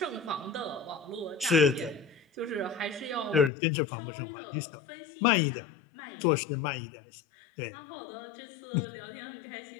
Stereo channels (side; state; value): right; drops out; at 3.5 s